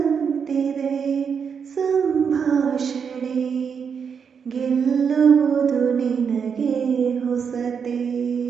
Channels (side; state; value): left; quieter; 6.6 dB